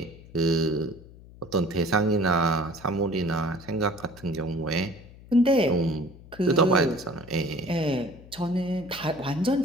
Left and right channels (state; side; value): noise; left; hum, 20 dB below the sound